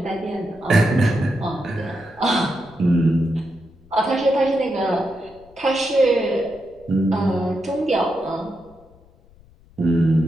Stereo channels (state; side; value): noise; left; rumble, 27 dB below the sound